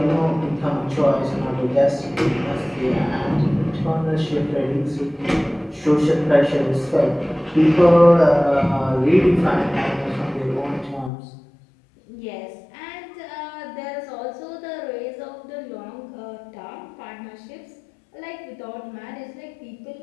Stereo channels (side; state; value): right; drops out; at 11.1 s